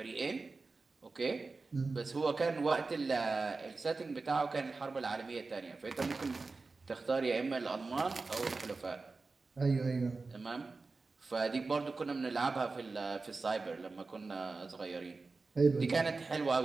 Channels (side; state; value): left; quieter; 3.9 dB